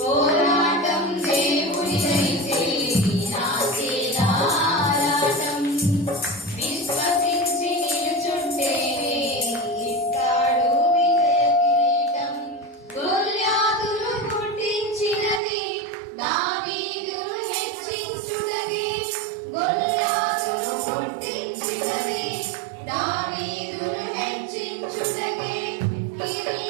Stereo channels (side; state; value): left; drops out; at 15.4 s